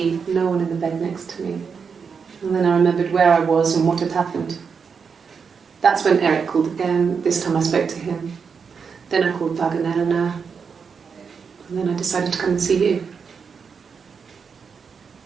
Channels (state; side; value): quieter; left; 6.0 dB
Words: no one in the bed next to me. And then I remembered where I was and what had happened. That's when Eric called again. This time I spoke to him. Then I called Doug and Eleanor. And then I decided to come and see you.